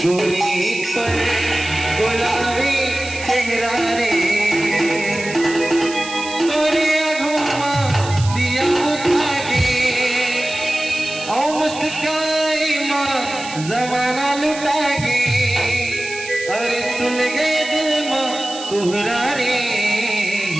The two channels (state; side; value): noise; right; hiss, 12 dB below the sound